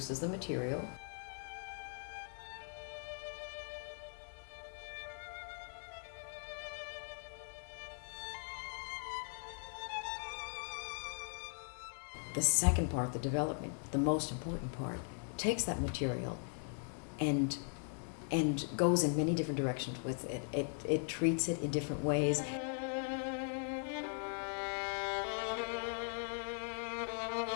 the material. The second part, the development, the most important part, takes that material and goes in many different directions with it. It treats it in different ways.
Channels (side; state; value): right; silent; 51 dB below the other